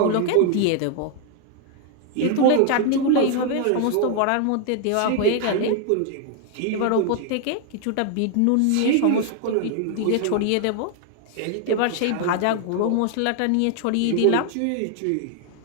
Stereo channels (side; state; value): both; different; correlation 0.00